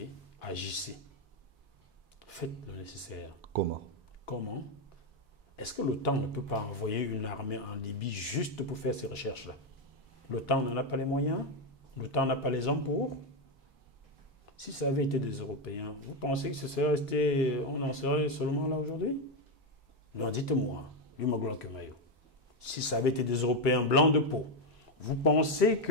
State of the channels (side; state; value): both; normal; correlation 0.07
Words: agissez. Faites le nécessaire. Comment? Comment? Est-ce que l'OTAN ne peut pas envoyer une armée en Libye juste pour faire ces recherches-là? L'OTAN n'en a pas les moyens? L'OTAN n'a pas les hommes pour? Si ça avait été des Européens, vous pensez que ce serait resté, on en serait seulement là aujourd'hui? Non, dites-moi, si ça avait été des Européens blancs de peau, vous pensez